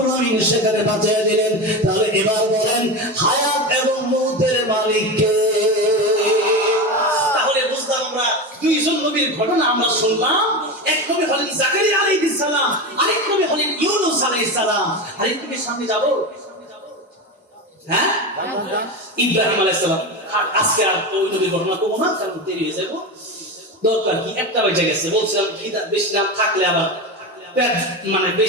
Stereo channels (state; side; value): normal; both; correlation 0.21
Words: আলামিন সেখানে বাঁচিয়ে দিলেন। তাহলে এবার বলেন, হায়াত এবং মউতের মালিক কে? তাহলে বুঝলাম আমরা দুইজন নবীর ঘটনা আমরা শুনলাম, এক নবী হলেন জাকারিয়া আলাইহিস সালাম, আরেক নবী হলেন ইউনূস আলাইহিস সালাম। আরেক নবীর সামনে যাব, হ্যাঁ, ইব্রাহিম আলাইহিস সালাম। আর আজকে আর ওই নবীর ঘটনা করবো না, কারণ দেরি হয়ে যাবো। দরকার কি, একটা বেজে গেছে। বলছিলাম বেশি নাম থাকলে আবার পেট মানে